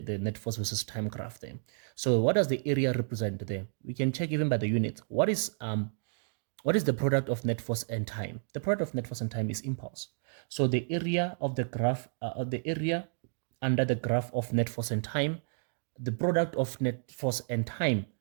net force versus time graph there. So what does the area represent there? We can check even by the units. What is the product of net force and time? The product of net force and time is impulse. So the area of the graph, the area under the graph of net force and time, the product of net force and time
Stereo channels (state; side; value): silent; left; digital silence